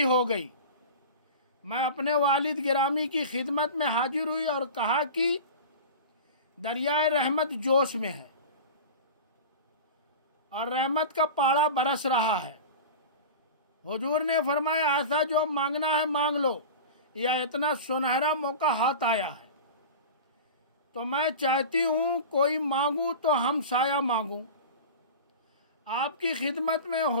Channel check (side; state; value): both; inverted; correlation -0.32